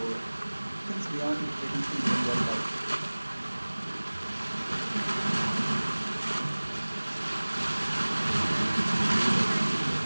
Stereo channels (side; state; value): both; inverted; correlation -1.00